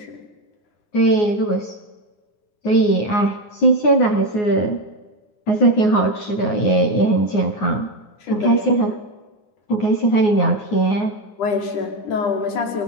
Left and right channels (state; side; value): late; right; 9.6 ms